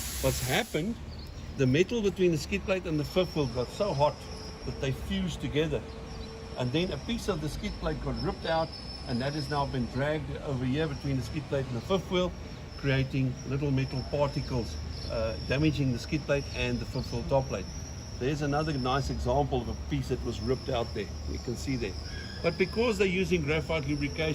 What's happened, the metal between the skid plate and the fifth wheel got so hot that they fused together. And then a piece of the skid plate got ripped out, and that has now been dragged over here between the skid plate and the fifth wheel, creating little metal particles, damaging the skid plate and the fifth wheel top plate. There's another nice example of a piece that was ripped out there. You can see there. But because they're using graphite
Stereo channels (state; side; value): identical; both; correlation 1.00